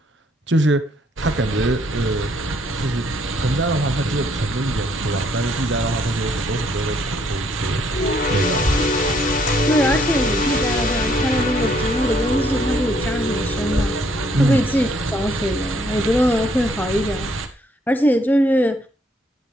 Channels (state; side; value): normal; both; correlation 0.68